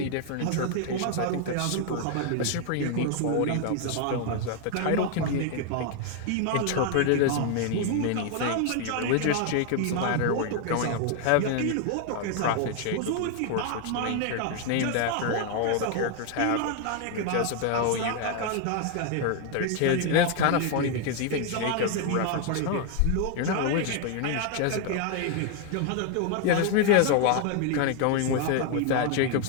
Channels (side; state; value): both; different; correlation 0.00